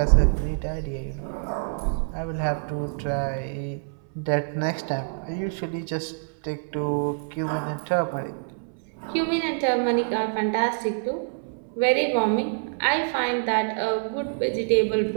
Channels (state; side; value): silent; left; 61 dB below the other